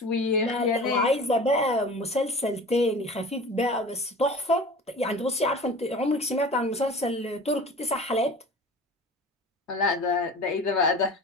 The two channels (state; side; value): normal; both; correlation 0.39